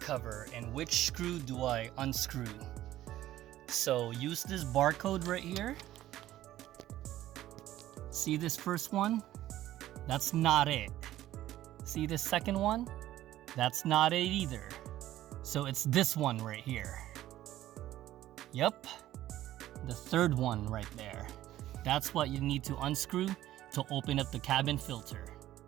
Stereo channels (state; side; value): quieter; left; 14.0 dB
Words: and which screw do I unscrew? So use this barcode right here. See this first one? That's not it. See this second one? That's not it either. So it's this one right here. Yep, the third one right there. That's what you need to unscrew to open up the cabin filter.